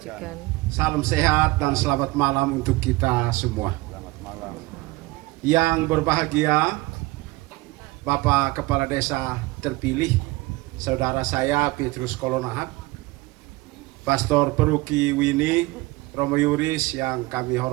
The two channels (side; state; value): left; quieter; 21.1 dB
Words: Salam sehat dan selamat malam untuk kita semua. Yang berbahagia, Bapak Kepala Desa terpilih, saudara saya Petrus Kolonahat, Pastor Peruki Wini Romo Yuris yang kami